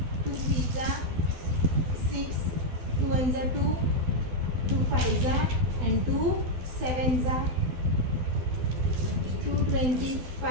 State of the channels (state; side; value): late; left; 12 ms